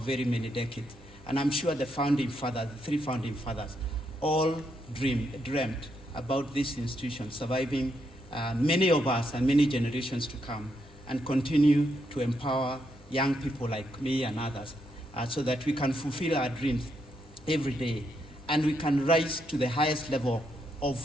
many decades, and I'm sure the founding fathers, the three founding fathers, all dreamt about this institution surviving many of us and many generations to come, and continue to empower young people like me and others so that we can fulfill our dreams every day, and we can rise to the highest level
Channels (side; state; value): both; normal; correlation 0.79